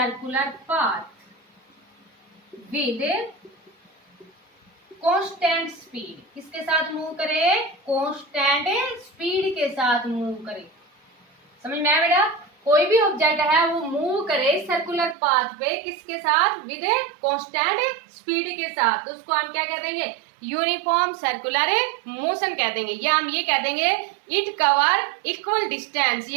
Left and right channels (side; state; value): left; drops out; at 15.2 s